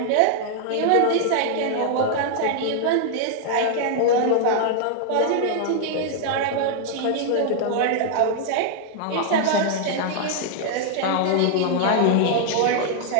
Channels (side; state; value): both; different; correlation -0.01